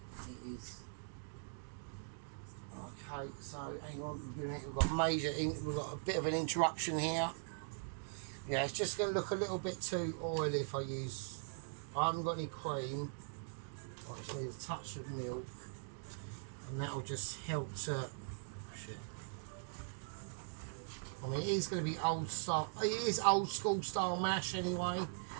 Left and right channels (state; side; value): silent; left; digital silence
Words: It is. Okay, so hang on. We've got a bit of an interruption here. Yeah, it's just going to look a little bit too oily if I haven't got any cream. I just need a touch of milk, and that'll just help to. Shit. I mean, it is going to be old style. It is old school style mash anyway.